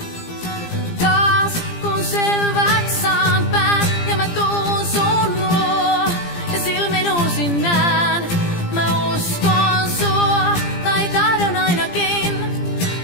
Taas kun selväks saan pään ja mä tuun sun luo ja silmin uusin näen, mä uskon sua tai tahdon ainakin,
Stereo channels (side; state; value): right; late; 17 ms